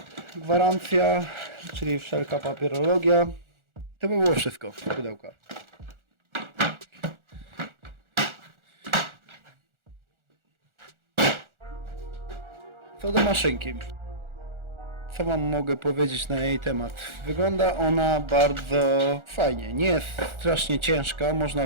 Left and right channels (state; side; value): late; left; 1.4 ms